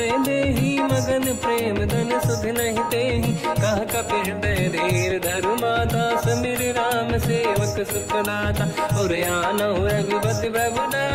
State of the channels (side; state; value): both; identical; correlation 1.00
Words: मगन प्रेम धन सुध नहीं तेहि। कह कपि हृदय धीर धरु माता, समिर राम सेवक सुखदाता। और आनहु रघुपति प्रभु